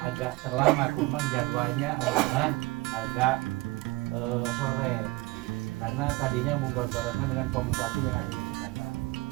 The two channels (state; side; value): quieter; left; 22.4 dB